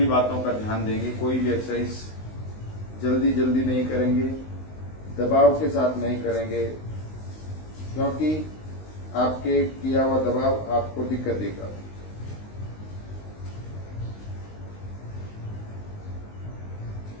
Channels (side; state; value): right; late; 19 ms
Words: बातों का ध्यान देंगे। कोई भी एक्सरसाइज जल्दी जल्दी नहीं करेंगे, दबाव के साथ नहीं करेंगे, क्योंकि आपके किया हुआ दबाव आपको दिक्कत देगा।